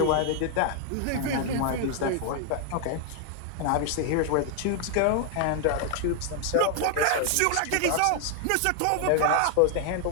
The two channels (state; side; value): different; both; correlation 0.00